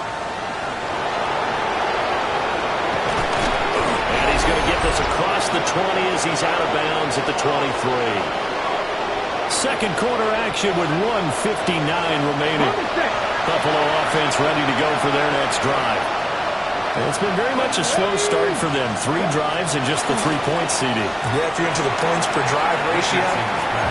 And he's going to get this across the 20 as he's out of bounds at the 23. Second quarter action with 1:59 remaining. Buffalo offense ready to go for their next drive. And it's been very much a slow start for them. 3 drives and just the 3-point CD. Yeah, if you're into the points per drive ratio,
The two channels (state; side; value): identical; both; correlation 1.00